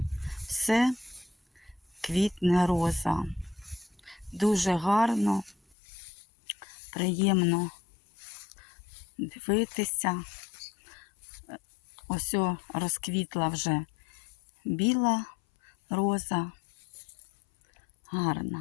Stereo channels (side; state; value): right; drops out; at 5.8 s